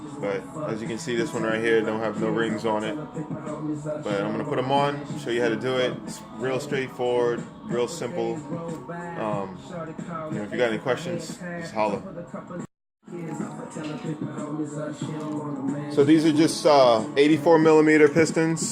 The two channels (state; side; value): identical; both; correlation 1.00